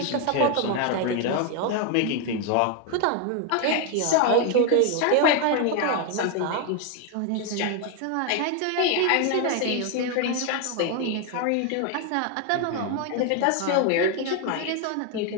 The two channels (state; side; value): different; both; correlation 0.01